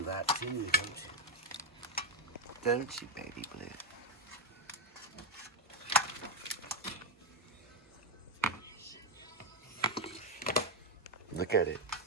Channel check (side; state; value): both; normal; correlation 0.05